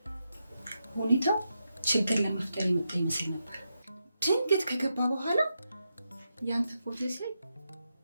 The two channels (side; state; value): both; inverted; correlation -0.86